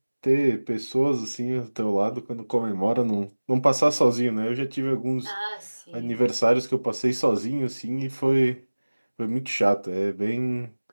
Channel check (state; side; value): inverted; both; correlation -1.00